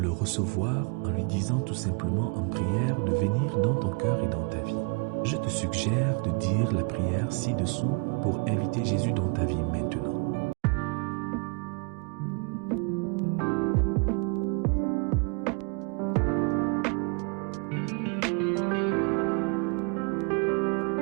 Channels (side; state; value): left; quieter; 35.1 dB